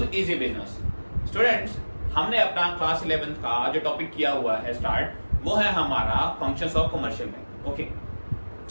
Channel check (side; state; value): both; inverted; correlation -1.00